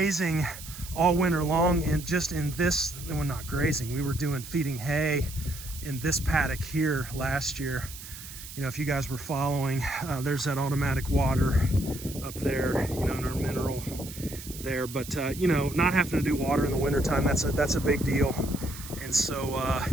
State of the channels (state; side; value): noise; right; hiss, 13 dB below the sound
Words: all winter long, and just in this, well, not grazing, we were feeding hay in this paddock here last year. You know, if you guys were following, there's that automatic water up there, you know, in our mineral there. But you know, not having to do water in the wintertime, that's a big deal. And so